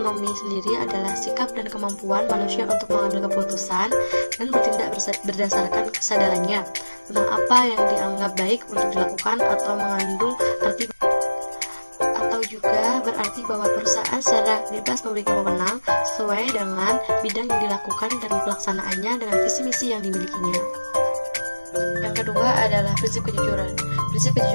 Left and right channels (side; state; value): both; inverted; correlation -1.00